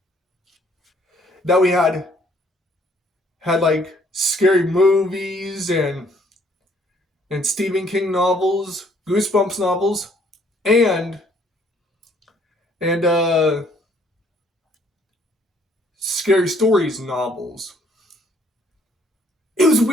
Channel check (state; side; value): normal; both; correlation 0.64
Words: that we had like scary movies and Stephen King novels, Goosebumps novels, and Scary Stories novels. It was